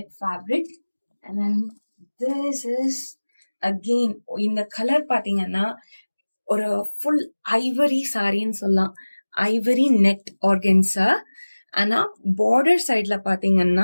fabric. and then this is again இந்த கலர் பாத்தீங்கன்னா ஒரு ஃபுல் ஐவரி சாரின்னு சொல்லலாம், ஐவரி நெட் ஆர்கன்ஸா. ஆனா பார்டர் சைட்ல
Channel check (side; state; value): both; inverted; correlation -1.00